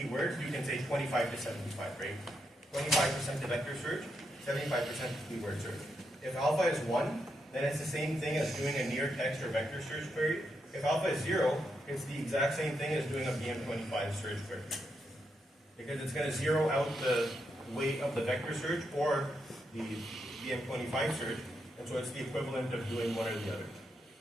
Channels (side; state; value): both; normal; correlation 0.82